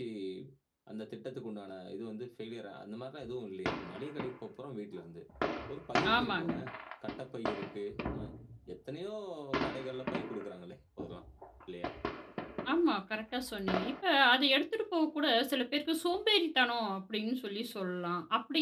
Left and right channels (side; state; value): both; identical; correlation 1.00